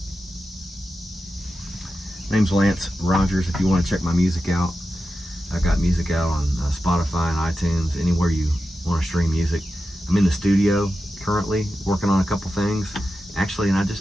Name's Lance Rogers. If you want to check my music out, I got music out on Spotify and iTunes, anywhere you want to stream music. I'm in the studio currently working on a couple things, actually, and I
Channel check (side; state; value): both; normal; correlation 0.91